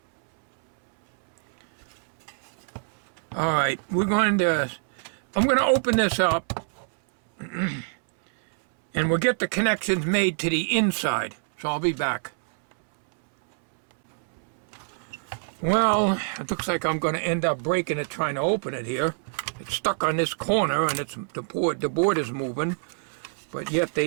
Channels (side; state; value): left; silent; 61 dB below the other